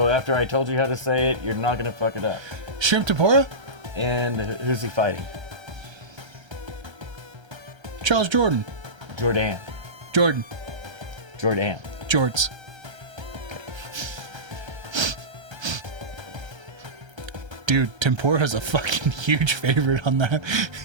after I told you how to say it, you're not going to fuck it up. Shrimp tempura? And who's he fighting? Charles Jordan. Jordan. Jordan. Jorts. Dude, tempura's a fucking huge favorite on that.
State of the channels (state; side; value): late; left; 1.3 ms